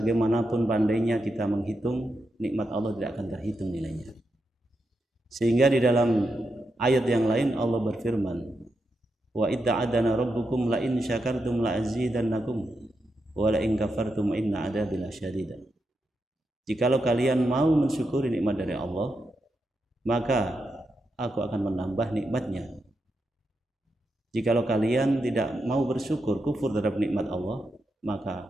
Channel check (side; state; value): both; normal; correlation 0.86